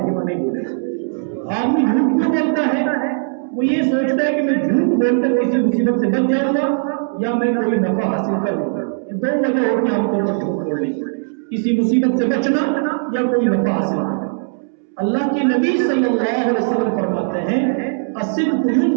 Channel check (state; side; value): silent; left; 67 dB below the other